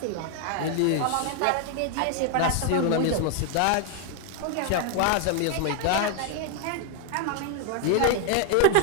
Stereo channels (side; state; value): both; different; correlation 0.00